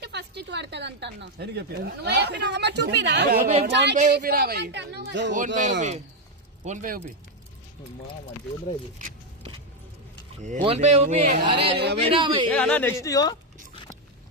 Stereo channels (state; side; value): normal; both; correlation 0.04